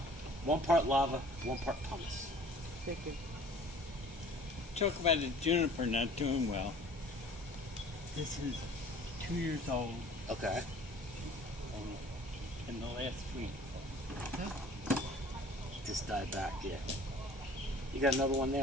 1 part lava, 1 part pumice. Thank you. Talk about the juniper not doing well. This is 2 years old Okay. in the last week. Just died back, yeah. You got another one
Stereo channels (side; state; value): both; normal; correlation 0.49